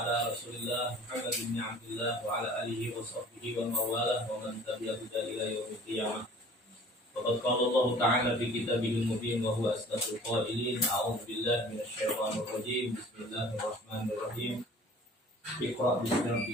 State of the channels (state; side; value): normal; both; correlation 0.48